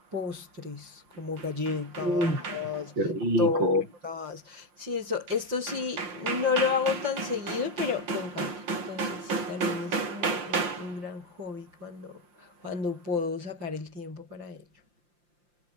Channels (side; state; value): left; late; 5.7 ms